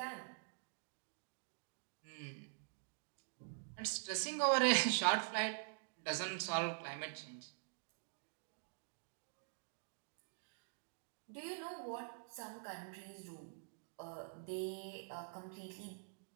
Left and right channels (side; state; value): left; silent; digital silence